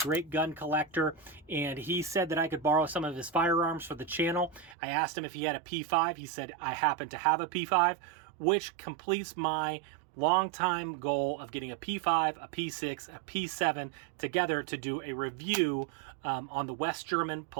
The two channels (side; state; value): left; drops out; at 4.8 s